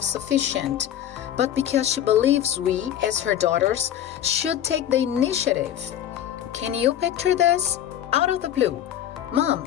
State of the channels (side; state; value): right; quieter; 10.8 dB